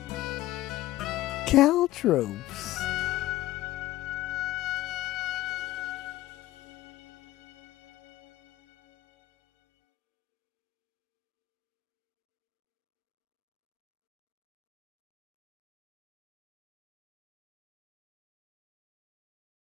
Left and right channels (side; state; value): right; quieter; 15.9 dB